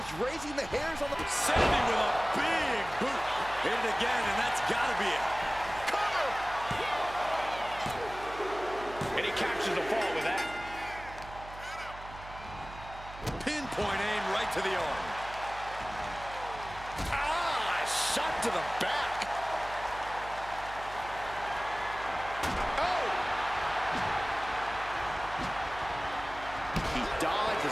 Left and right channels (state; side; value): noise; right; hum, 15 dB below the sound